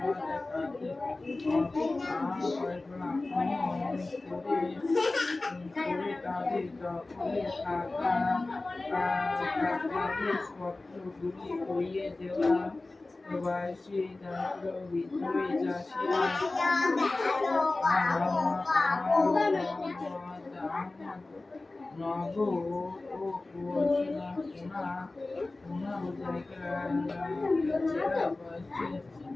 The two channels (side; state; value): right; quieter; 3.2 dB